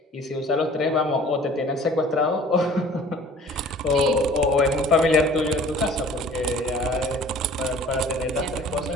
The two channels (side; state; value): both; normal; correlation 0.48